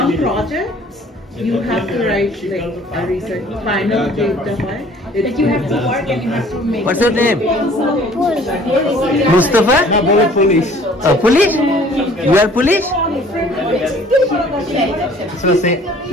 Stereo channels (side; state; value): both; normal; correlation 0.53